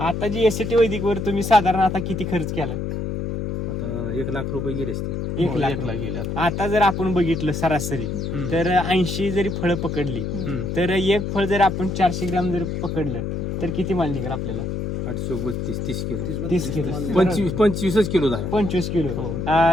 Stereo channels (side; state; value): left; noise; hum, 3 dB below the sound